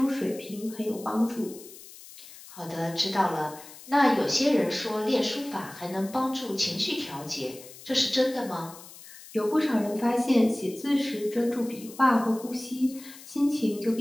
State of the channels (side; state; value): left; noise; hiss, 18 dB below the sound